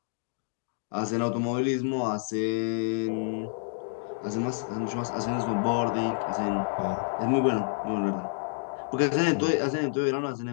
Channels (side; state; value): right; silent; digital silence